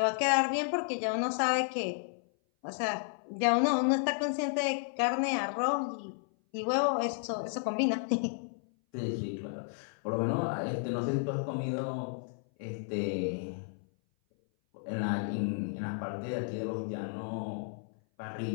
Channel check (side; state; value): right; silent; 56 dB below the other